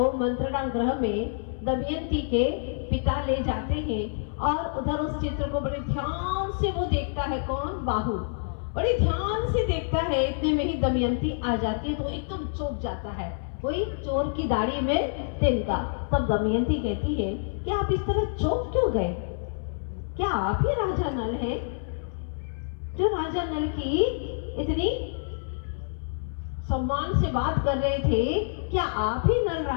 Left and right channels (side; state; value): right; silent; 60 dB below the other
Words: मंत्रणा गृह में दमयंती के पिता ले जाते हैं और उधर उस चित्र को बड़े ध्यान से वो देखता है। कौन? बाहु बड़े ध्यान से देखता है। इतने में ही दमयंती आ जाती है तो एकदम चौंक जाता है, कोई चोर की दाढ़ी में तिनका। तब दमयंती कहती है कि आप इस तरह चौंक क्यों गए? क्या आप ही राजा नल हैं जो राजा नल की इतनी सम्मान से बात कर रहे थे? क्या आप ही नल